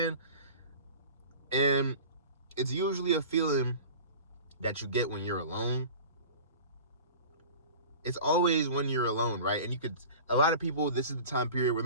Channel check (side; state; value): both; inverted; correlation -0.39